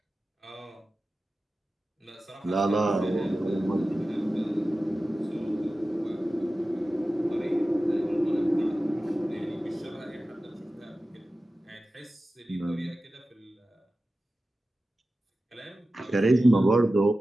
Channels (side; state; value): both; normal; correlation 0.95